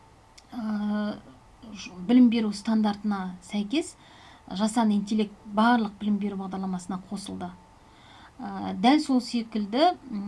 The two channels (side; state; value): both; identical; correlation 1.00